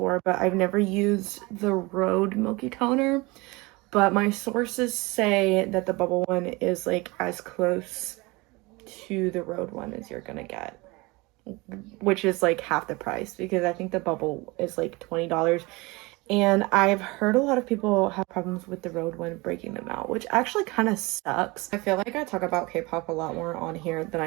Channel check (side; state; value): left; quieter; 24.2 dB